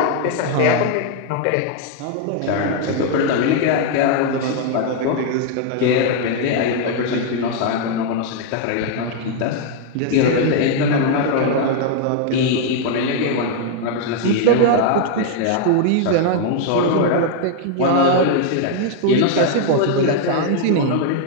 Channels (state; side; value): different; both; correlation 0.00